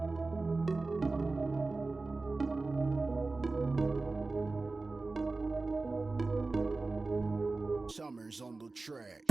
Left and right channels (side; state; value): left; quieter; 3.5 dB